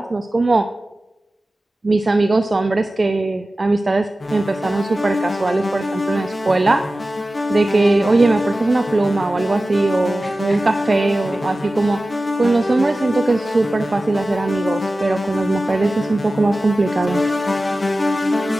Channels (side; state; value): both; normal; correlation 0.95